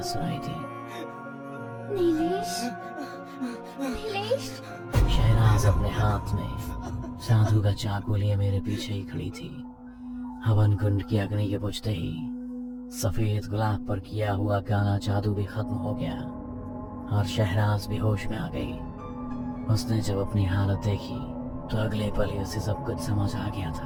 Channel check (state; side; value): identical; both; correlation 1.00